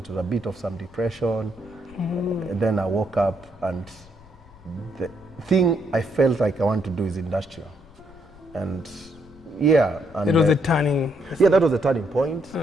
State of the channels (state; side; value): noise; left; rumble, 24 dB below the sound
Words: a bit of some depression. And then I woke up, and the thing I felt like I want to do is industrial. And yeah. And it was a turning. Yeah, that was a turning point.